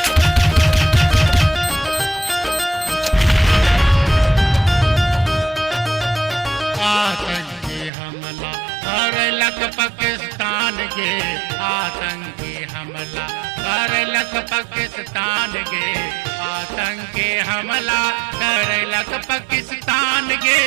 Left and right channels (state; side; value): drops out; left; at 7.9 s